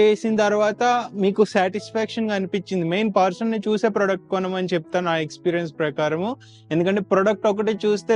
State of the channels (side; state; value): both; identical; correlation 1.00